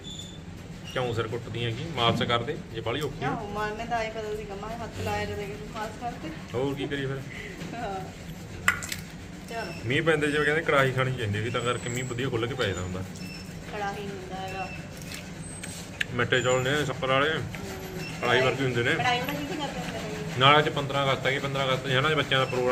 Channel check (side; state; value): both; identical; correlation 1.00